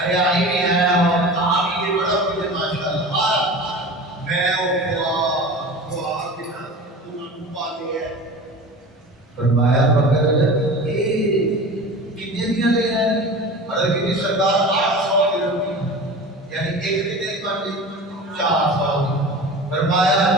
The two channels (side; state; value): both; normal; correlation 0.34